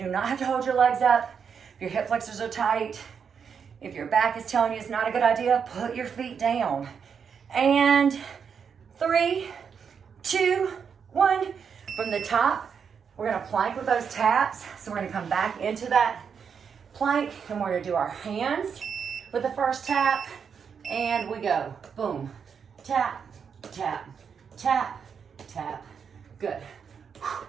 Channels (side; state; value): left; quieter; 6.7 dB